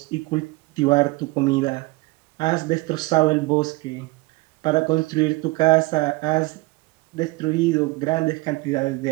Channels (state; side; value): quieter; left; 22.9 dB